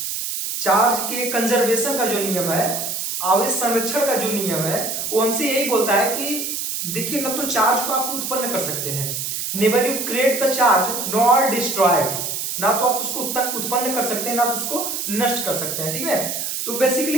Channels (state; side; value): noise; right; hiss, 3 dB below the sound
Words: चार्ज के कंजर्वेशन का जो नियम है, आवेश संरक्षण का जो नियम है, वो हमसे यही बोलता है कि देखिए, ना तो चार्ज को आप उत्पन्न कर सकते हैं, never you create the charge nor destroyed, ना तो आप उसको उत्पन्न कर सकते हैं, ना तो उसको नष्ट कर सकते हैं। ठीक है, तो बेसिकली